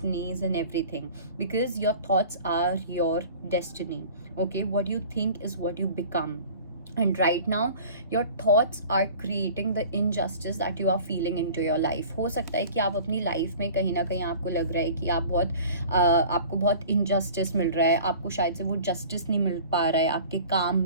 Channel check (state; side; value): inverted; both; correlation -0.44